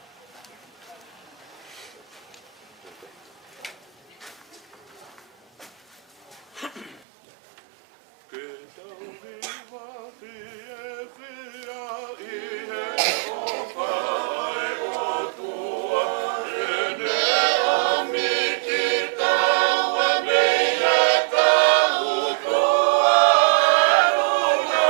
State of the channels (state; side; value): drops out; left; at 7.0 s